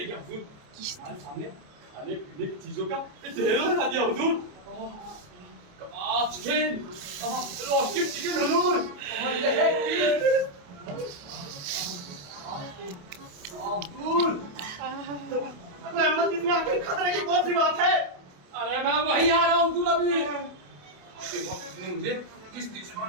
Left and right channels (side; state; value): left; late; 28 ms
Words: गया हुजूर। हमारे सामने खाने पीने की चीजों का ढेर लगा दिया हुजूर। कबाब चिकन, रोस्टेड चिकन हुजूर, और लेग पीस। हुजूर, रहमत इसमें आखिर खतरे की कौन सी बात है? अरे मैं वही आ रहा हूँ हुजूर अभी। आपके वक्त इसने मुझे किश्ती